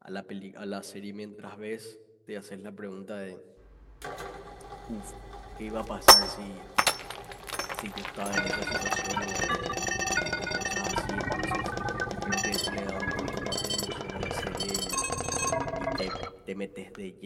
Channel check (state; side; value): identical; both; correlation 1.00